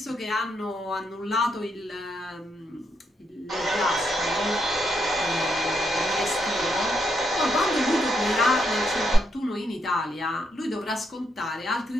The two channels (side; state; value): both; normal; correlation 0.78